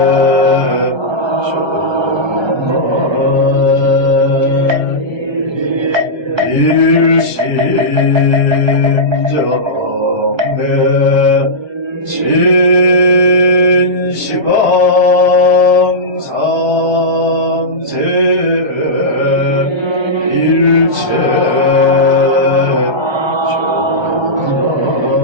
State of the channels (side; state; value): left; late; 1.3 ms